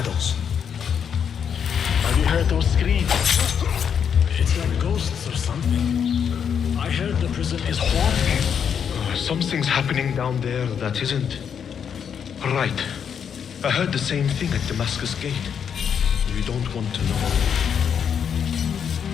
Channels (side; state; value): right; quieter; 7.6 dB